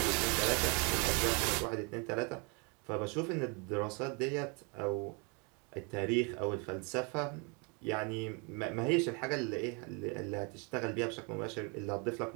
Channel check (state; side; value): quieter; left; 32.7 dB